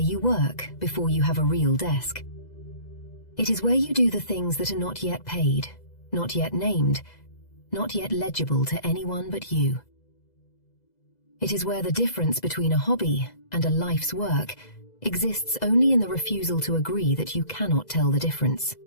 work before you have a real desk. It is where you do the things that are not yet paid, not yet named, not yet legible to anyone but you. It is where the difference between a hobby and a life's work exists only in the refusal to agree that you cannot tell the difference.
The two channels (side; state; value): right; late; 2.0 ms